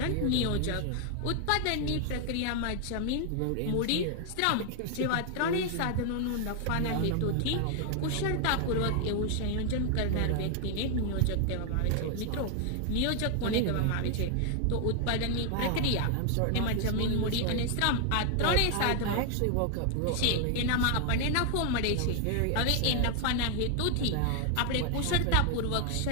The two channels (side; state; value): both; different; correlation 0.00